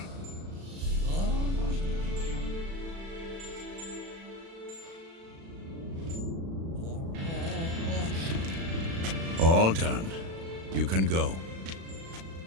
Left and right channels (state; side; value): late; left; 36 ms